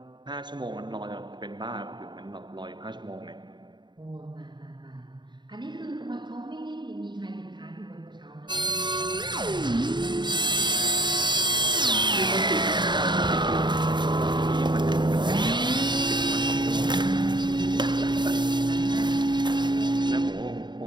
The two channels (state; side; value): late; left; 0.22 ms